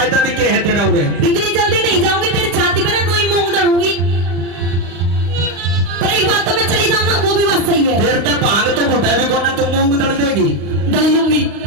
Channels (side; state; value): left; late; 35 ms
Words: भी क्या है तेरा उरे। इतनी जल्दी नहीं जाऊंगी, तेरी छाती पर कोई मूंग दड़ूंगी। पर एक बात तो मैं चली जाऊंगा, वो भी बात सही है। फिर तो भांग तो घोटा भी कोना तू मूंग दड़ देगी। दल लूंगी।